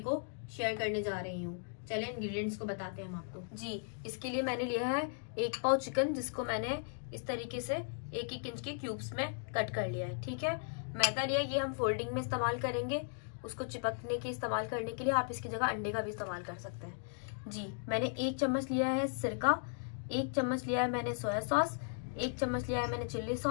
शेयर करने जा रही हूँ। चलिए इंग्रेडिएंट्स को बताते हैं हम आपको। जी इसके लिए मैंने लिया है 1 पाव चिकन, जिसको मैंने इस तरीके से 1-1 इंच के क्यूब्स में कट कर लिया है। ठीक है, मैदा लिया, ये हम फोल्डिंग में इस्तेमाल करेंगे। उसको चिपकने के इस्तेमाल करने के लिए आप इसकी जगह अंडे का भी इस्तेमाल कर सकते हैं। जी मैंने 1 चम्मच लिया है सिरका, 1 चम्मच लिया है मैंने सोया सॉस, 1 चम्मच लिया है मैंने चिल्ली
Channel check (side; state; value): right; silent; digital silence